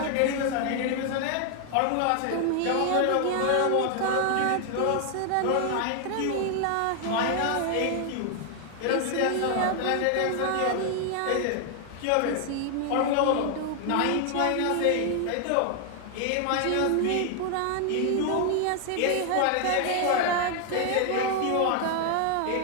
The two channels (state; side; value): different; both; correlation 0.00